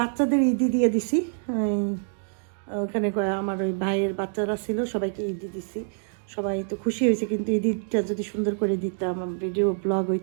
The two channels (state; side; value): silent; left; digital silence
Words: ঈদি দিয়ে দিছি, ওখানে আমার ওই ভাইয়ের বাচ্চারা ছিল, সবাইকে ঈদি দিছি, সবাই তো খুশি হয়েছে। কিন্তু ঈদটা যদি সুন্দর করে দিতাম, ভিডিও ব্লগ